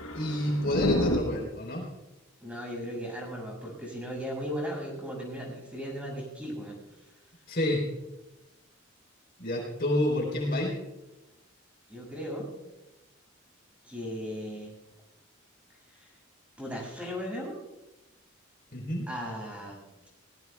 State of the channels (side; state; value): both; normal; correlation 0.52